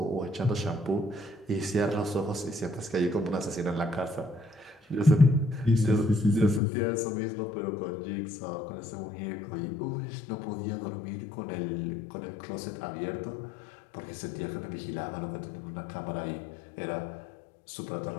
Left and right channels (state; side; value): drops out; right; at 6.6 s